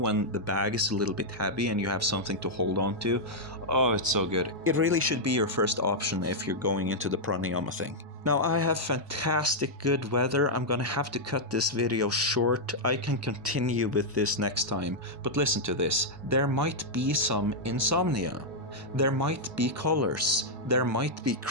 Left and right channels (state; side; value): normal; both; correlation -0.05